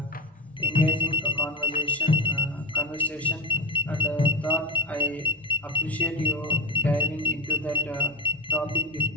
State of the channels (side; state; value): both; normal; correlation 0.21